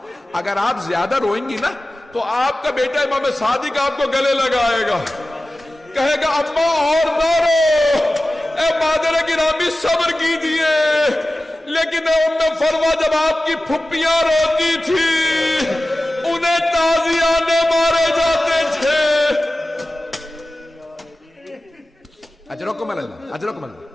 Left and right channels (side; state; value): both; normal; correlation 0.96